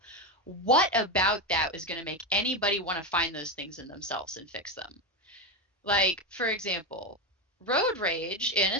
what about that is going to make anybody want to find those things in themselves and fix them? Like, for example, road rage, in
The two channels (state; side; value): normal; both; correlation 0.13